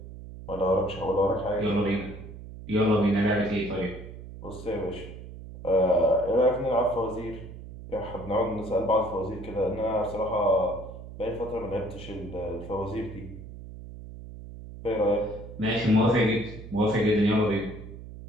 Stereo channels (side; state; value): right; noise; hum, 13 dB below the sound